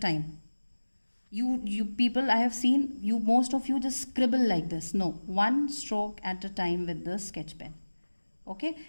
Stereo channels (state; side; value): inverted; both; correlation -1.00